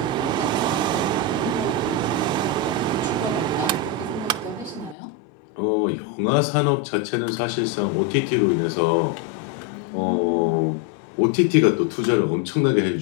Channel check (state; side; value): drops out; right; at 5.0 s